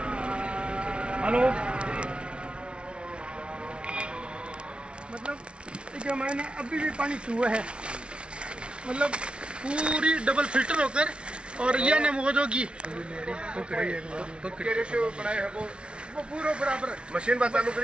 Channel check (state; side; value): late; left; 0.058 ms